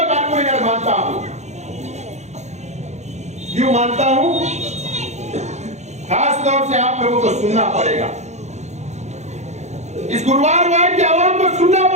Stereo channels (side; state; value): left; late; 0.33 ms